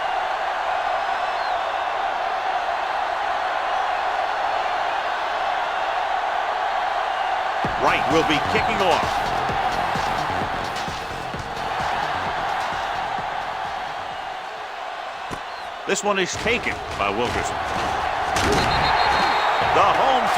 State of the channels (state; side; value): identical; both; correlation 1.00